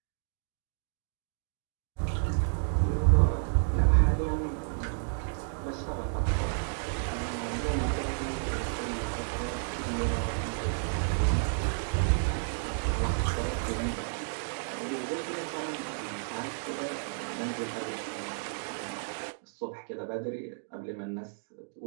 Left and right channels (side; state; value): left; silent; digital silence